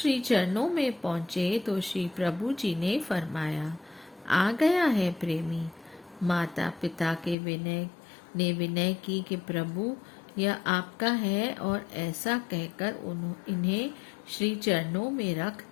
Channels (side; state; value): right; drops out; at 7.4 s